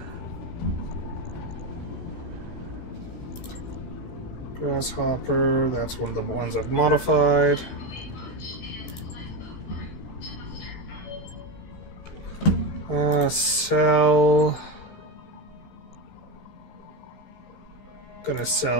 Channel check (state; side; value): late; right; 16 ms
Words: Grasshopper, that's one of the ones I've modified. Sell. Gonna